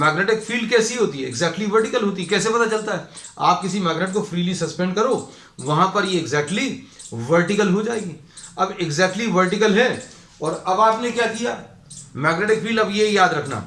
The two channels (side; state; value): both; identical; correlation 1.00